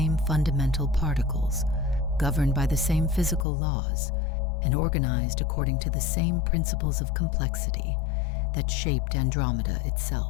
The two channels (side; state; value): right; drops out; at 3.5 s